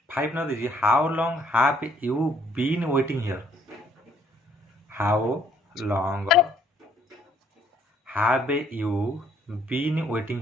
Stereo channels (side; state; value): both; normal; correlation 0.65